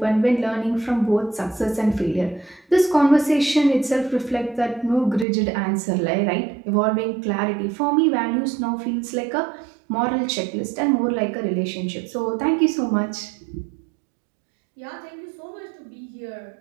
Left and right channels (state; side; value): drops out; left; at 5.2 s